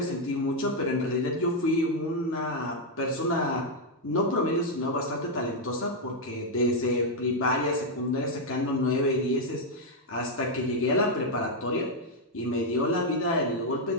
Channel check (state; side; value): normal; both; correlation 0.00